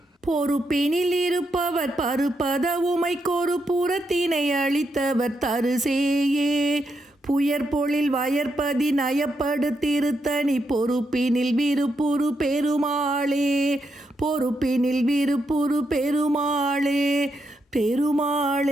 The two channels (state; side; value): normal; both; correlation 0.82